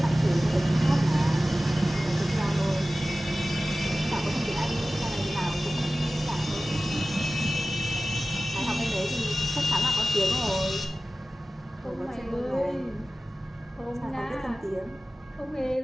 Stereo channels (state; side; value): normal; both; correlation 0.96